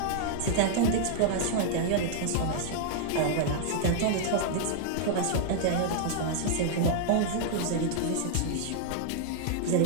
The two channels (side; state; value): both; different; correlation -0.01